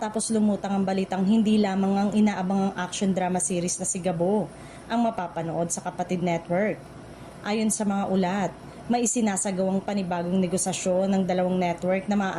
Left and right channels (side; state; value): both; identical; correlation 1.00